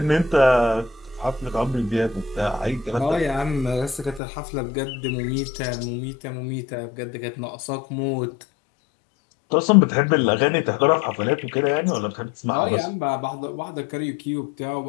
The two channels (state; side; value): drops out; right; at 4.2 s